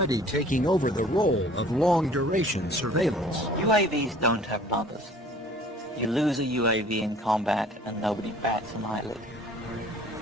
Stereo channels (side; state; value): both; normal; correlation 0.51